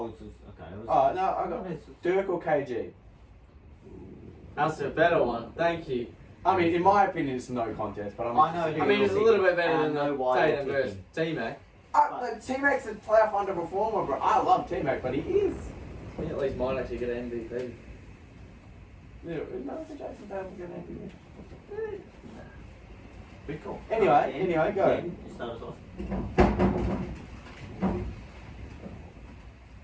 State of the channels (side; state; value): both; identical; correlation 1.00